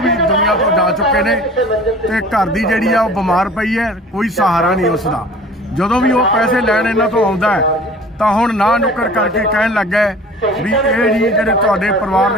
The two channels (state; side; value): normal; both; correlation 0.45